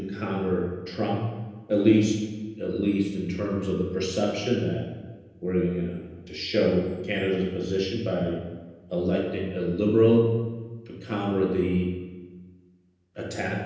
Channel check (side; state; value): both; identical; correlation 1.00